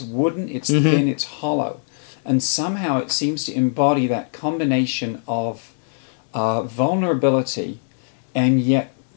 wooden, it's thin, it's hollow. And somehow it seems to embody that combination of vulnerability and yet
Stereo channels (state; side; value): silent; right; digital silence